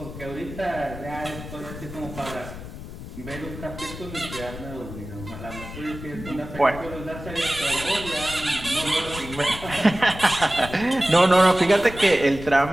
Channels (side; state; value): left; noise; rumble, 11 dB below the sound